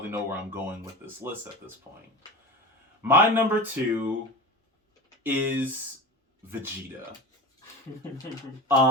know where I'm going with this list at this point. My number 2 is Vegeta.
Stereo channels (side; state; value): both; normal; correlation 0.29